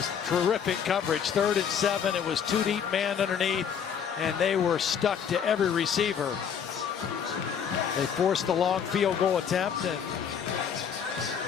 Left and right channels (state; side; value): quieter; right; 7.6 dB